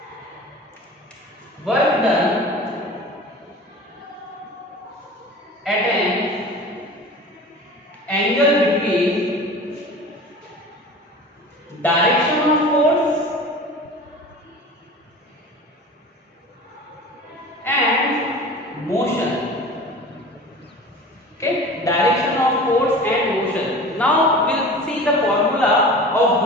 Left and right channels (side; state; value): both; normal; correlation 0.38